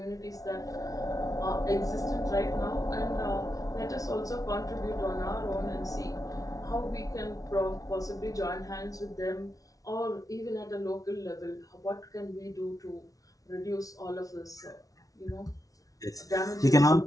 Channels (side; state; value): right; late; 0.18 ms